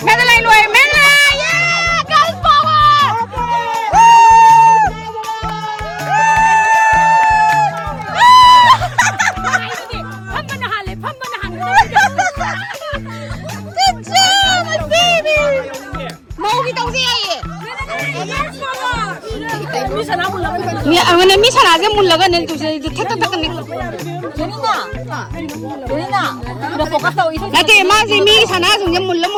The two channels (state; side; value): identical; both; correlation 1.00